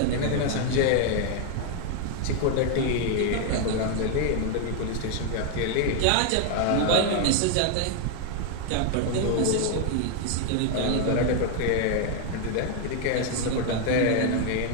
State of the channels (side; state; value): both; different; correlation 0.00